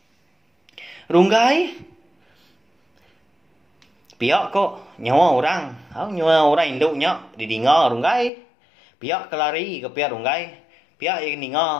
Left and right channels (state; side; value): drops out; right; at 8.3 s